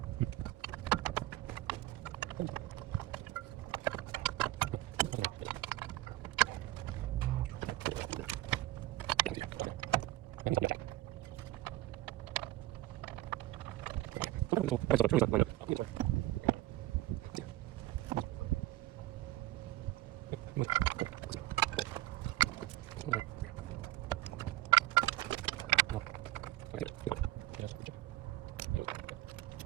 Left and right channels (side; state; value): left; quieter; 16.5 dB